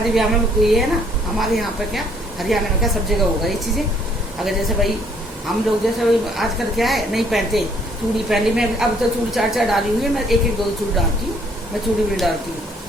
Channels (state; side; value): normal; both; correlation 0.64